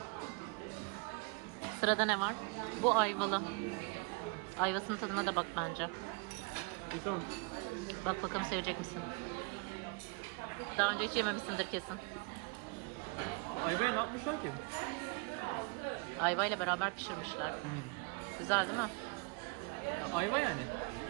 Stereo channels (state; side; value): quieter; left; 31.4 dB